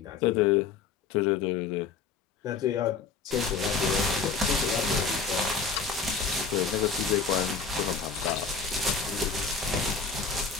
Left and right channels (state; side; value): quieter; right; 5.5 dB